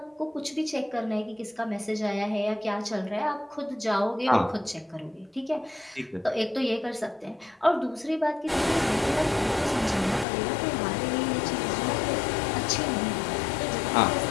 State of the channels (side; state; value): right; drops out; at 10.2 s